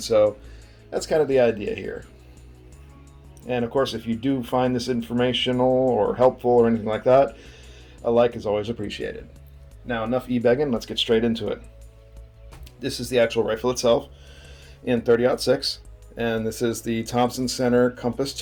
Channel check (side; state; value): both; identical; correlation 1.00